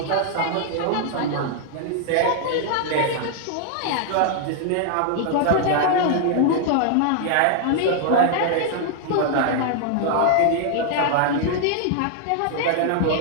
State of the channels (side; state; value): both; different; correlation 0.00